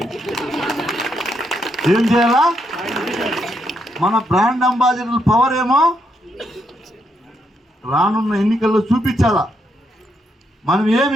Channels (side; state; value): both; normal; correlation 0.78